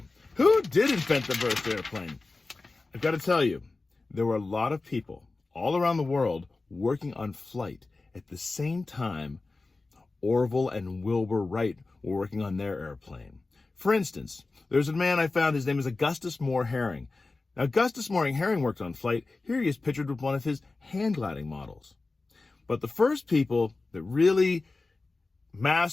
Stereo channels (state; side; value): quieter; right; 3.5 dB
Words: Who did invent the first airplane? I've got to tell you, there were a lot of people all around the world working on flight at the same time Orville and Wilbur Wright were working on their airplane. For instance, there's a man I found, his name is Augustus Moore Herring. Now, Augustus Moore Herring worked on flight. Here he is pictured with one of his hand gliding models. But the first people that really